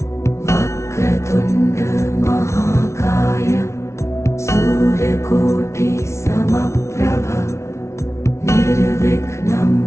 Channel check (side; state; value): right; late; 0.13 ms